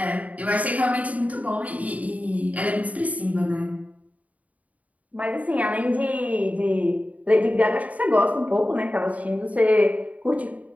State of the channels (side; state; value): left; late; 0.070 ms